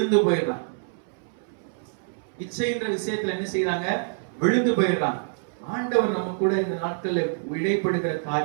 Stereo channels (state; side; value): silent; left; 61 dB below the other